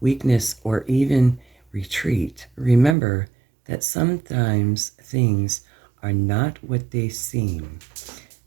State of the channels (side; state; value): left; drops out; at 3.0 s